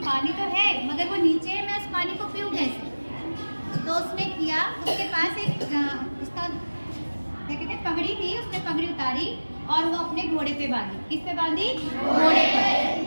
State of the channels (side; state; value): both; inverted; correlation -1.00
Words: पानी तो है मगर वो नीचे है, मैं उस पानी को पीऊँ कैसे। तो उसने किया, उसके पास एक उसका क्या कहते हैं पगड़ी थी, उसने पगड़ी उतारी और वो अपने घोड़े पे बांधी। किस पे बांधी? घोड़े पर।